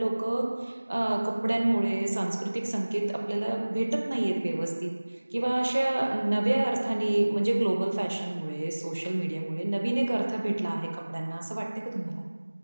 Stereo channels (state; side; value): inverted; both; correlation -1.00